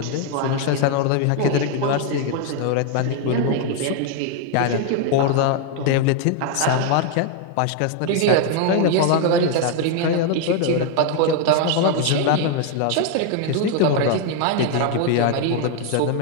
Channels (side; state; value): both; different; correlation 0.01